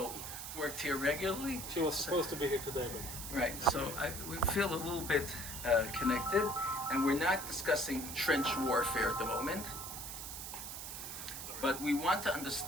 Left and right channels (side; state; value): right; noise; hiss, 7 dB below the sound